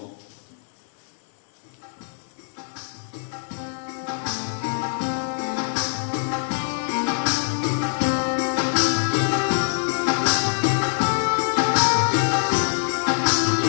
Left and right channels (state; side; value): silent; right; digital silence